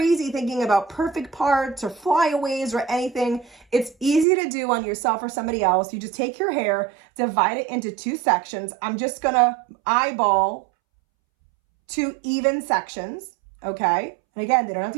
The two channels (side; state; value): left; drops out; at 4.2 s